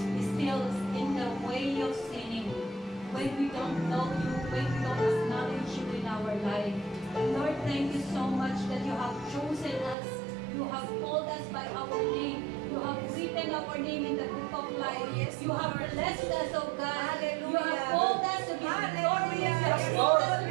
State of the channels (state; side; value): drops out; left; at 10.0 s